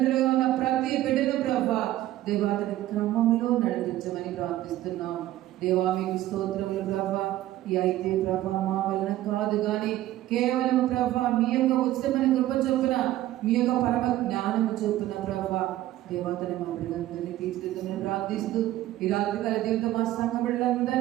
ఉన్న ప్రతి బిడ్డను ప్రభా దేవా తండ్రి క్రమంలో నడిపించమని ప్రార్థిస్తున్నాం. దేవా మీకు స్తోత్రములు ప్రభా. ఈ అయితే ప్రభా మా వలన కాదు కానీ కేవలం ప్రభా మీ యొక్క ఉచితమైన కృప చొప్పున మీ యొక్క పరమ జ్ఞానము చొప్పున ప్రభా దేవతని మా బిడ్డలందరినీ తీర్చిదిద్దమని ప్రార్థిస్తూ ఈ రాత్రి కాల దేవుతో మా సంఘ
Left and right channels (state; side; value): quieter; left; 14.7 dB